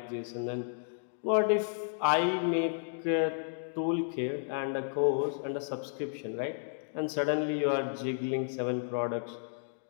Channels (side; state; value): right; silent; digital silence